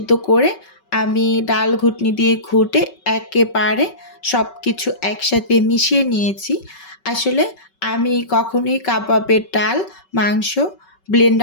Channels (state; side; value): late; right; 5.3 ms